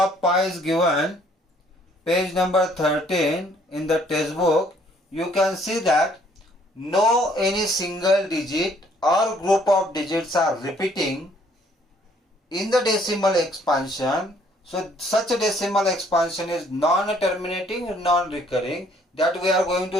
pi is given, page number 13 in the textbook. You can see that no any single digit or group of digits are repeating in the decimal expansion. So such a decimal expansion is non-terminating, non-recurring, that we are going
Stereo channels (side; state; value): both; normal; correlation 0.63